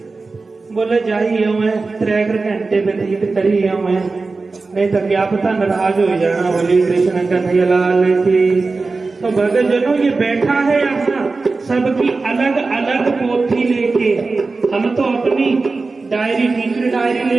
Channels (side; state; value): left; quieter; 3.9 dB